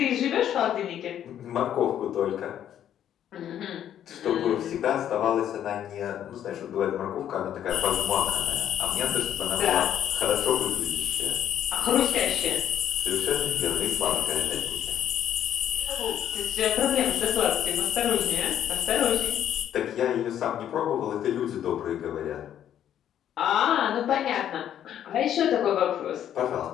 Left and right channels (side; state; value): right; quieter; 10.4 dB